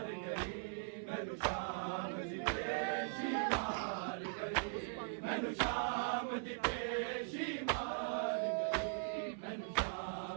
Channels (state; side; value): silent; left; 51 dB below the other